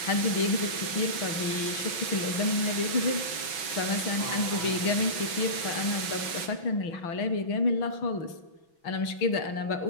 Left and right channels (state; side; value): late; right; 6.1 ms